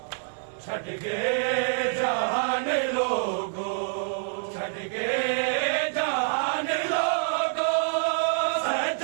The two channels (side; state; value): left; silent; digital silence